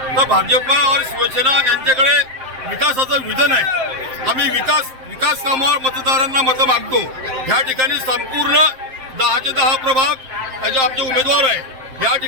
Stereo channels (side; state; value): left; late; 7.6 ms